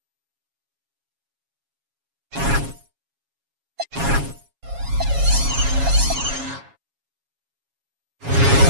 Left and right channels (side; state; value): left; late; 7.2 ms